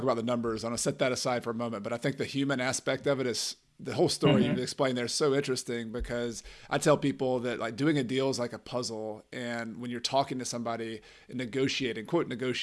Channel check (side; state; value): both; identical; correlation 1.00